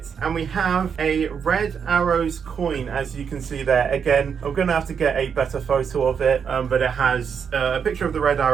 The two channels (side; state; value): left; quieter; 6.9 dB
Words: and we have a Red Arrows coin, as you can see there. Again, I'm gonna have to get a better photo of it, but it has a picture of the Red